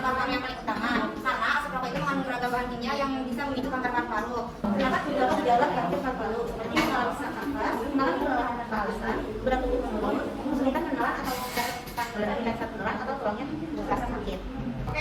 paru yang paling utama karena asap rokok itu mengandung beragam bahan kimia yang bisa memicu kanker paru-paru. Terdapat beberapa gejala kanker paru-paru seperti mengalami sesak nafas, mengalami kelelahan nafas, berat tubuh menurun, kesulitan menelan atau tulangnya terasa sakit.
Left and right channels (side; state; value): both; identical; correlation 1.00